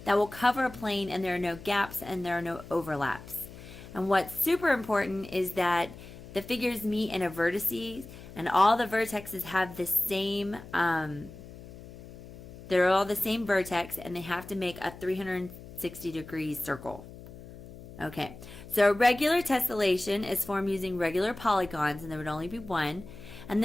that will cover a plane, and there are no gaps and there are no overlaps. And what's super important is that the figures meet in a vertices, and all the vertexes have the same, they're all the same vertex, and they have to make a 360-degree circle. Okay, so a regular tessellation is formed using regular polygons, and there would only be one. And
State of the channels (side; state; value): left; noise; hum, 16 dB below the sound